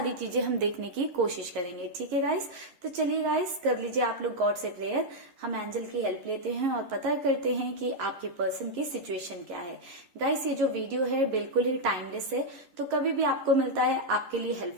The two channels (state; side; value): late; left; 11 ms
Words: चीजें हम देखने की कोशिश करेंगे। ठीक है गाइस, तो चलिए गाइस, कर लीजिए आप लोग गॉड से प्रेयर। हम एंजल की हेल्प लेते हैं और पता करते हैं कि आपके पर्सन की सिचुएशन क्या है। गाइस, ये जो वीडियो है बिल्कुल ही टाइमलेस है, तो कभी भी आपको मिलता है आपके लिए